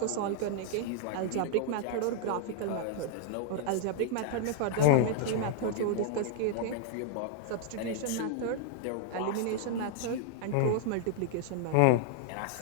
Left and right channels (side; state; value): both; different; correlation 0.00